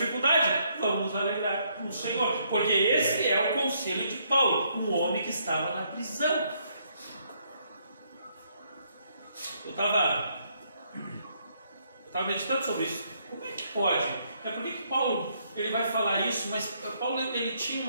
vamos nos alegrar no Senhor, porque esse é o conselho de Paulo, um homem que estava na prisão. Eu estava meditando sobre isso. Como é que pode? Por que Paulo ele vai falar isso? Mas Paulo ele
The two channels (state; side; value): inverted; both; correlation -0.71